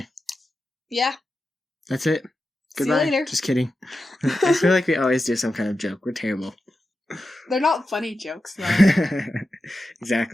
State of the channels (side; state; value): both; normal; correlation 0.91